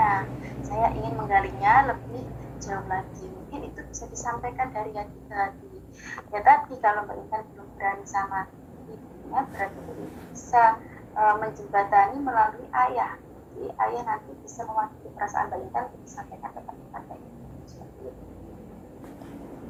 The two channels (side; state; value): both; identical; correlation 1.00